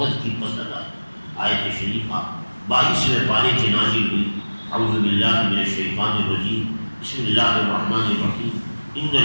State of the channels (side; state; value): both; inverted; correlation -1.00